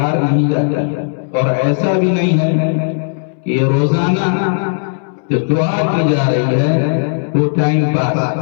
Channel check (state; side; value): silent; right; 67 dB below the other